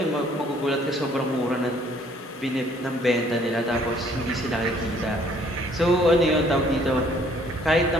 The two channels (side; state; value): both; normal; correlation 0.61